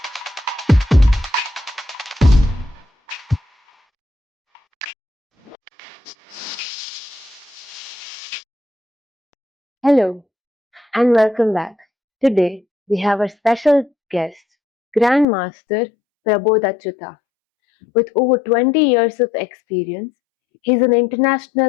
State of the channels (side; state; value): right; drops out; at 15.2 s